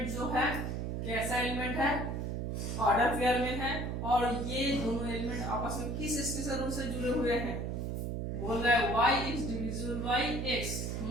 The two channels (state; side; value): noise; right; hum, 2 dB below the sound